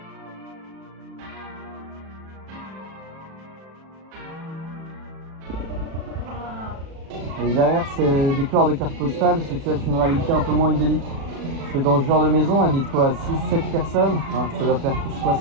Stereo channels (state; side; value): late; left; 37 ms